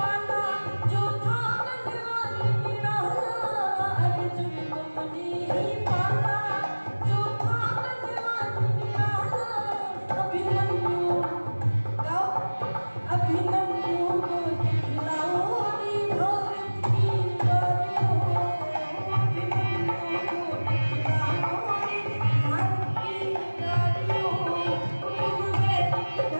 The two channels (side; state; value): both; inverted; correlation -1.00